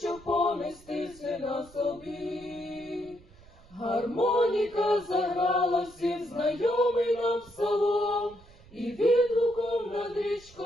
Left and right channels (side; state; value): right; noise; rumble, 24 dB below the sound